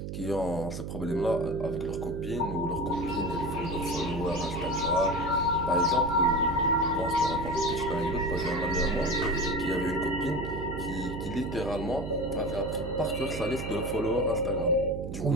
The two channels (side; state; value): right; noise; hum, 6 dB below the sound